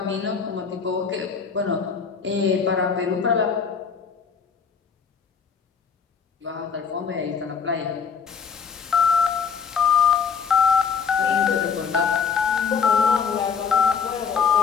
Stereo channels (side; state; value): right; quieter; 6.3 dB